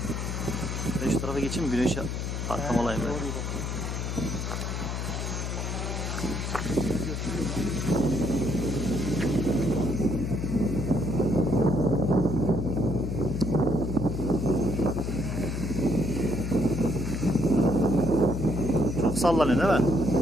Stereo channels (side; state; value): left; noise; hum, 3 dB below the sound